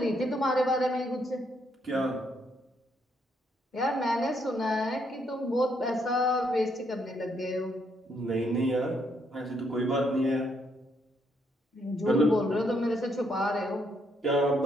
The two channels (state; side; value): normal; both; correlation 0.74